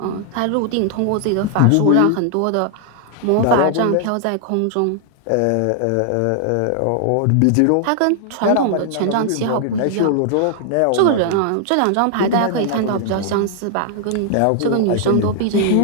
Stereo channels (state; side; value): different; both; correlation 0.00